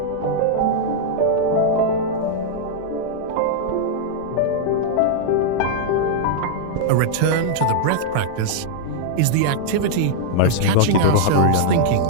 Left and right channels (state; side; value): different; both; correlation -0.01